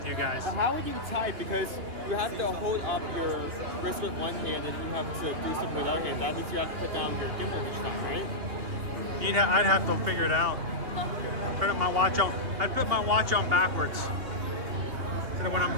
you guys. But how would you type? Because you have to hold up your wrist with one hand and you have to do something with the other hand. That means you have to put down your gimbal each time, right? I'd have to figure it out. I'd put my watch on backwards. So that when I'm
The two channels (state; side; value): late; left; 3.2 ms